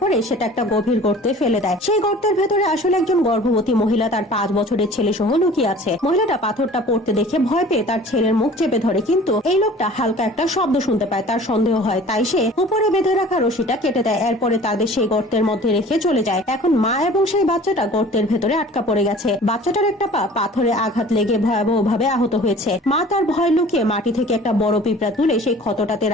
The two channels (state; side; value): normal; both; correlation 0.46